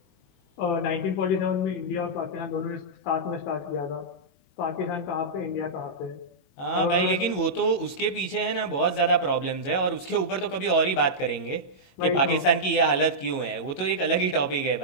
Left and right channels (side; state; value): right; late; 22 ms